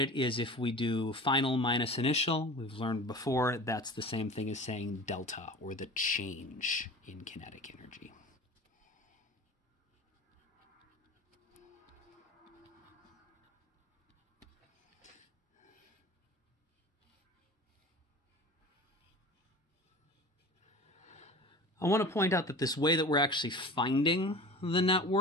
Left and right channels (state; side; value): normal; both; correlation 0.38